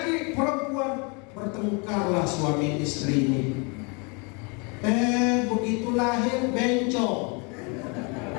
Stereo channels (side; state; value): right; quieter; 32.2 dB